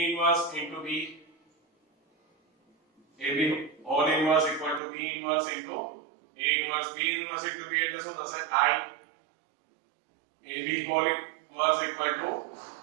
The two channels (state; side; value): drops out; left; at 4.8 s